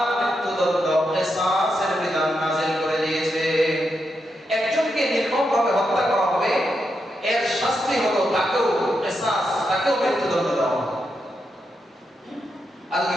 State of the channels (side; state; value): both; normal; correlation 0.84